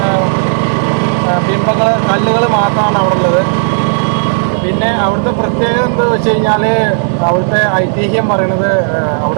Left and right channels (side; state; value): left; silent; digital silence